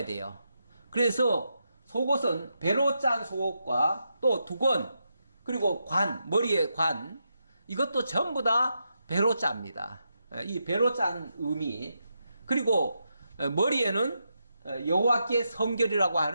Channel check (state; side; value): inverted; both; correlation -0.84